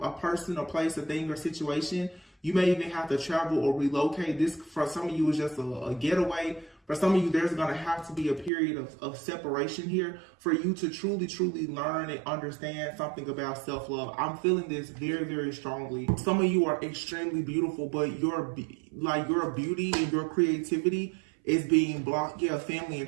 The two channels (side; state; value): left; drops out; at 8.5 s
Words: a person, a place, a thing, or situation. You may even have to travel or relocate. This, for some of you, is just a getaway. For some of you, there's going to have to be a period of separation here for you to truly, truly learn and understand something about self-love. I'm feeling this very, very strongly. Some of you are extremely beautiful, but your beauty and your creativity is being blocked. Yeah, family and